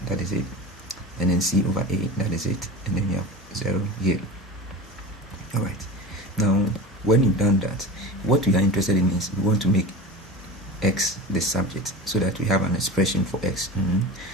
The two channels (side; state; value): both; normal; correlation 0.32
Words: that is it, and then c over a, that is it, and then you have 0 here. All right, now when you've done that, what we are interested in is we want to make x the subject so that we have an expression for x.